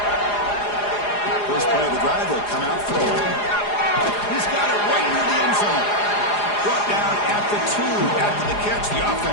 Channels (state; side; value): late; right; 4.9 ms